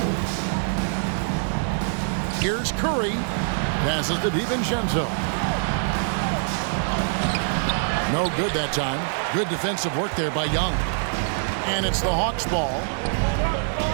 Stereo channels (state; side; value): silent; left; digital silence